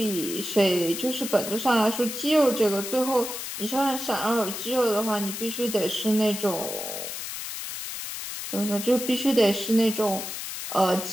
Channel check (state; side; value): noise; left; hiss, 7 dB below the sound